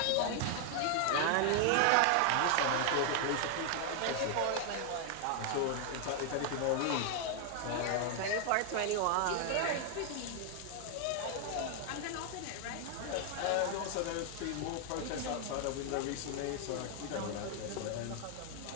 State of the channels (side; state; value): both; different; correlation 0.00